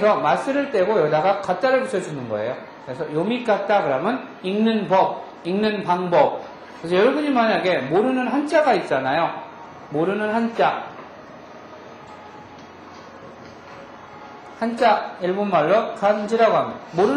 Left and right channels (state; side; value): identical; both; correlation 1.00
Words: 마스를 떼고 여기다가 가따를 붙여주는 거예요. 그래서 요미가따 그러면 읽는 법, 읽는 방법. 그래서 여러분이 만약에 모르는 한자가 있잖아요. 모르는 한자 일본말로 간지라고 합니다.